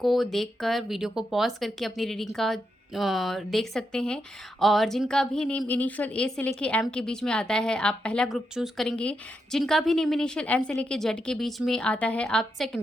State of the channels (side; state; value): both; normal; correlation 0.84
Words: देखकर वीडियो को पॉज करके अपनी रीडिंग का देख सकते हैं। और जिनका भी नेम इनिशियल ए से लेके एम के बीच में आता है, आप पहला ग्रुप चूज़ करेंगे। जिनका भी नेम इनिशियल एन से लेके जेड के बीच में आता है, आप